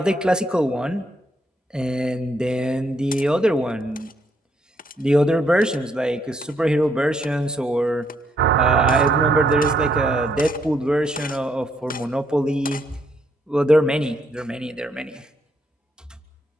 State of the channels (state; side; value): normal; both; correlation 0.73